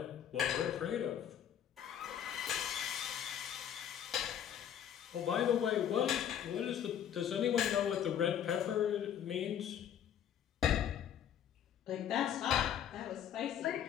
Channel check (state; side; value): quieter; right; 9.6 dB